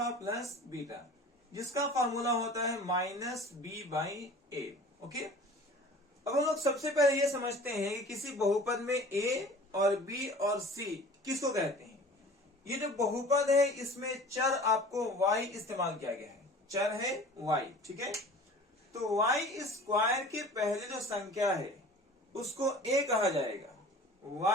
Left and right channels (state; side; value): normal; both; correlation 0.43